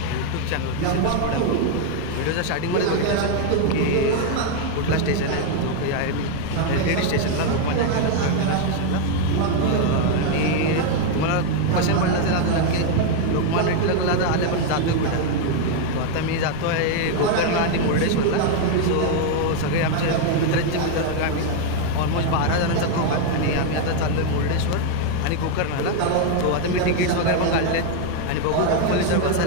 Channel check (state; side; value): different; both; correlation 0.01